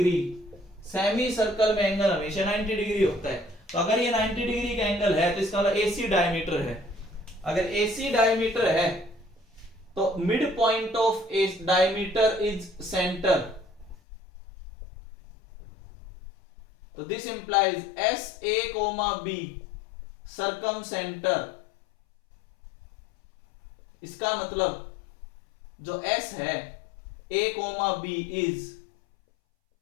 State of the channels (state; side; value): drops out; right; at 14.0 s